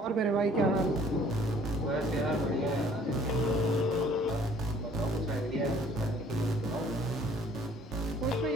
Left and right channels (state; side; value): normal; both; correlation 0.56